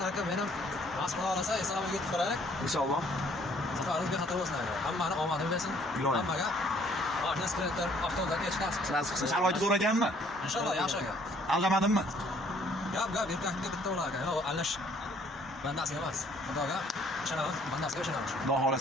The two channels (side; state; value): both; normal; correlation 0.61